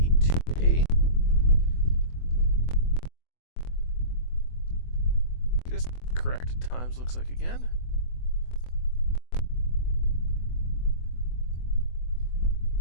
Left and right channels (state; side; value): late; right; 24 ms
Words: 2A? Just corrected times looks like again.